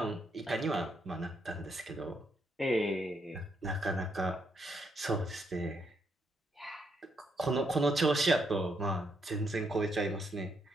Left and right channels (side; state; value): both; normal; correlation 0.76